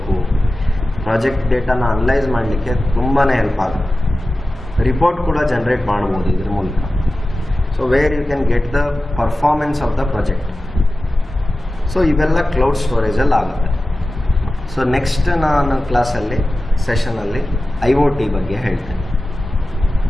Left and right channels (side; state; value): both; normal; correlation 0.95